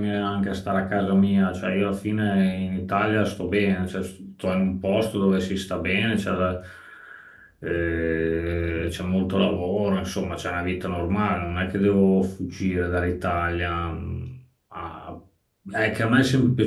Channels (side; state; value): both; identical; correlation 1.00